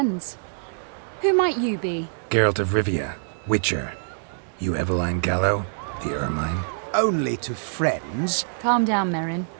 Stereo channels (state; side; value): silent; left; digital silence